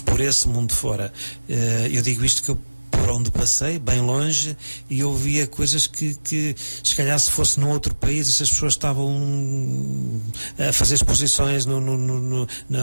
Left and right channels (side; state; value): both; inverted; correlation -1.00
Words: Por esse mundo fora. Eu digo isto que eu por onde passei, bem longe, e eu via coisas que se calhar se fosse num outro país, essas pessoas estavam a fazer exposições